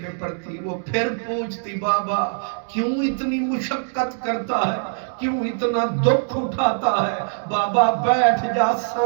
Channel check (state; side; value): silent; left; digital silence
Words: پہ پڑتی، وہ پھر پوچھتی بابا کیوں اتنی مشقت کرتا ہے، کیوں اتنا دکھ اٹھاتا ہے، بابا بیٹھ جا